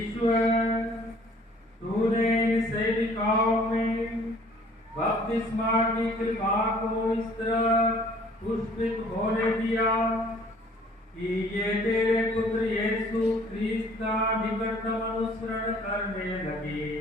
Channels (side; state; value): both; normal; correlation 0.55